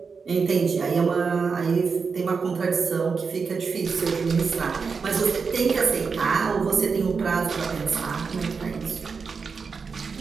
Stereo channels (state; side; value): quieter; left; 5.3 dB